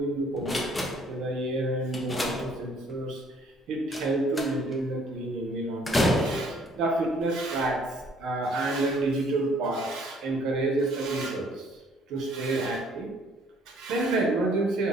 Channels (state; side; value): normal; both; correlation 0.61